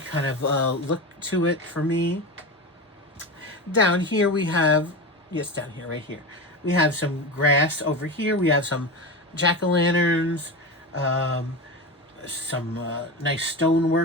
of look to it for me. Down here we have, yes, down here, right here, we have some grass over here. We have some jack-o'-lanterns, some nice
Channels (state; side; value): normal; both; correlation 0.23